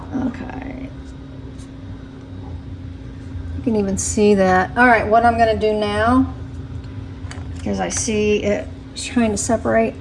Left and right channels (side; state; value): both; identical; correlation 1.00